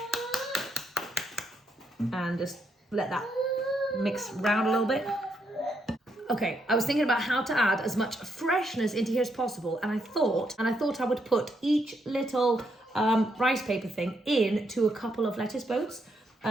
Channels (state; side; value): normal; both; correlation 0.78